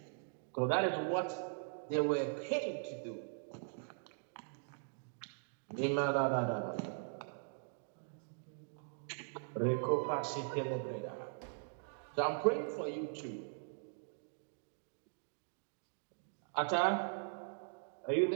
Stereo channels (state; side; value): silent; left; digital silence